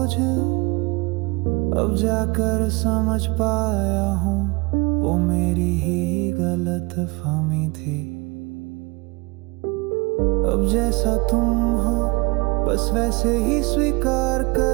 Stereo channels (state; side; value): quieter; left; 25.8 dB